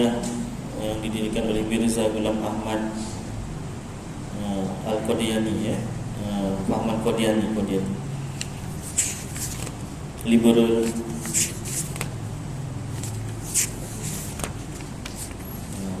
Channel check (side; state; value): both; identical; correlation 1.00